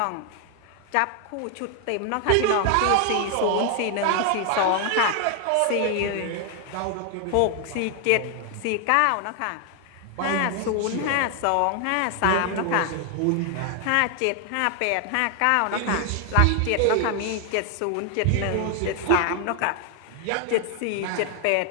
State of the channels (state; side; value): different; both; correlation 0.00